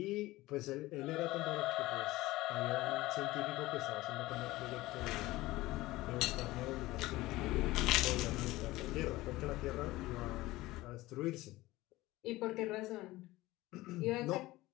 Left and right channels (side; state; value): right; quieter; 18.5 dB